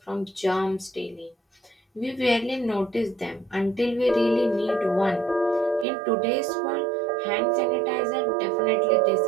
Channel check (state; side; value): drops out; left; at 5.9 s